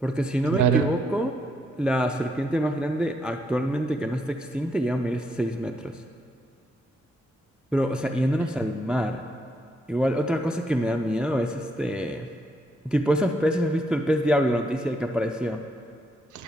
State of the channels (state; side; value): normal; both; correlation 0.76